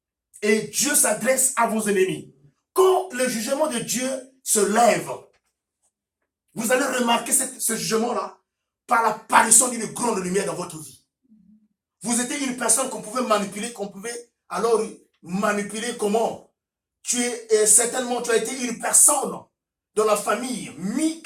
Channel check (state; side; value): identical; both; correlation 1.00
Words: Et Dieu s'adresse à vos ennemis. Quand le jugement de Dieu se lève, vous allez remarquer ce jugement-là par l'apparition d'une grande lumière dans votre vie. Vous étiez une personne qu'on pouvait manipuler, alors manipuler comment? Certainement, tu as été une personne dans la famille, mis